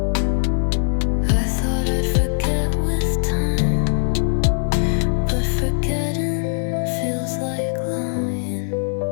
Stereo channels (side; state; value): right; silent; digital silence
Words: I thought I'd forget with time, but forgetting feels like lying.